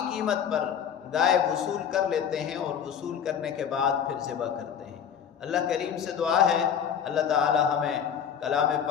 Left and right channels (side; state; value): right; quieter; 8.2 dB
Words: قیمت پر گائے وصول کر لیتے ہیں، اور وصول کرنے کے بعد پھر ذبح کرتے ہیں۔ اللہ کریم سے دعا ہے اللہ تعالی ہمیں کلام